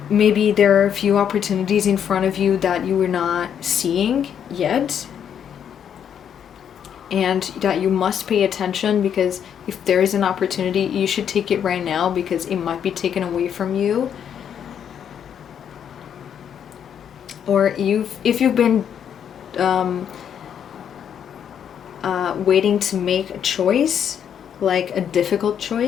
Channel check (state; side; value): quieter; right; 8.6 dB